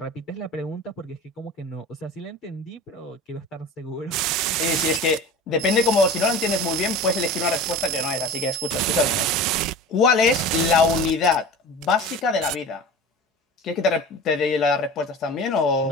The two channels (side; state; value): both; normal; correlation 0.35